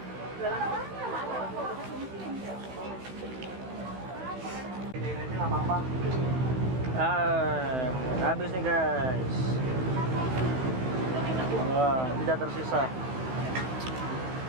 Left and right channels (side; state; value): left; late; 16 ms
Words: Habis nih guys. Wah, tidak tersisa.